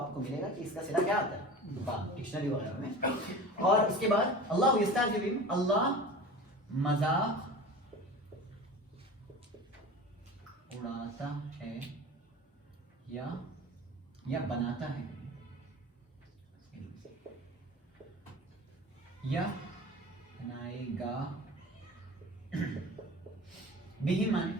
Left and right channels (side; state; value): both; normal; correlation 0.36